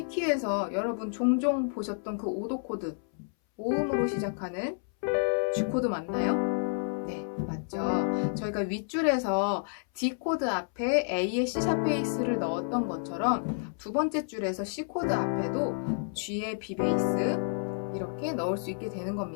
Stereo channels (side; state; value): right; silent; 58 dB below the other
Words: 여러분 종종 보셨던 그 5도 코드, 5음으로 시작하는 G 코드 맞나요? 네, 맞죠. 저희가 윗줄에서 D 코드 앞에 A의 C샵 베이스를 넣었던 것처럼 두 번째 줄에서 C 코드 앞에도 G의 B 베이스 이렇게 넣을 수 있게 되는